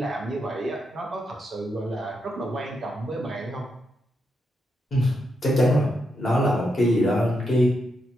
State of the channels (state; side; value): normal; both; correlation 0.83